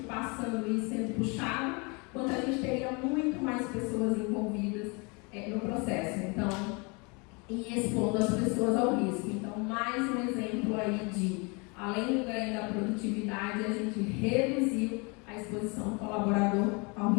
passando e sendo puxado, quanto a gente teria muito mais pessoas envolvidas no processo. Então, e expondo as pessoas ao risco. Então, mais um exemplo aí de, além do ganho da produtividade, a gente reduziu a exposição do colaborador ao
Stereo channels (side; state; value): right; quieter; 30.4 dB